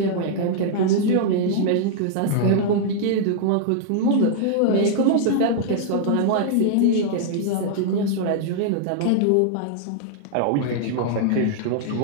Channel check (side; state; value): both; different; correlation -0.01